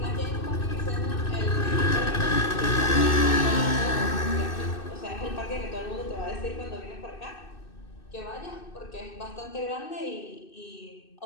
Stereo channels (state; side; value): late; right; 2.6 ms